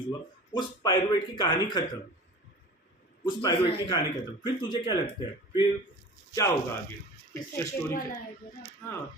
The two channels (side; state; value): both; normal; correlation 0.39